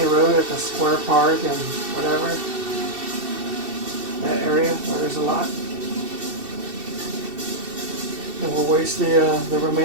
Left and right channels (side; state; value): left; late; 2.7 ms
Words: road at the square park and whatever. That area where there's a lot. And we'll waste the